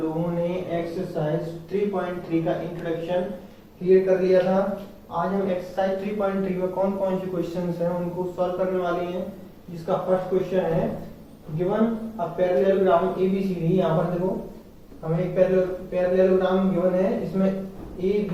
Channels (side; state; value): both; identical; correlation 1.00